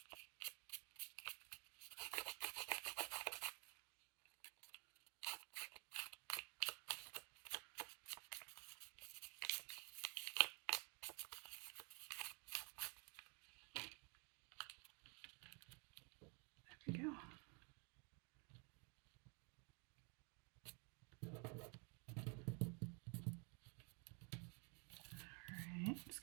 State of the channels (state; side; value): quieter; left; 34.4 dB